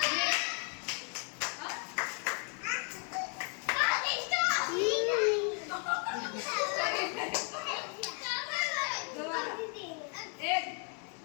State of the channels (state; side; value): quieter; right; 39.7 dB